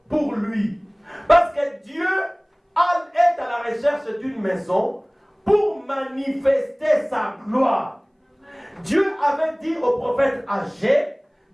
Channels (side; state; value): both; identical; correlation 1.00